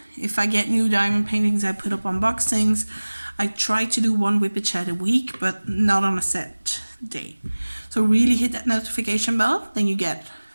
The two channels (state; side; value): inverted; both; correlation -1.00